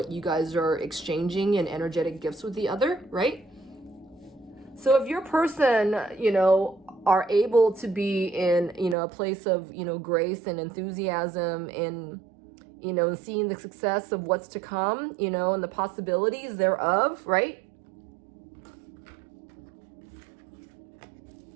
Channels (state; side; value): drops out; left; at 9.0 s